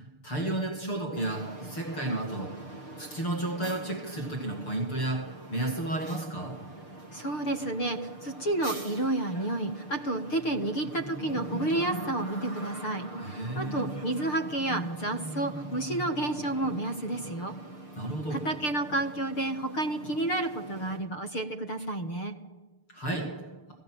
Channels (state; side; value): late; right; 6.7 ms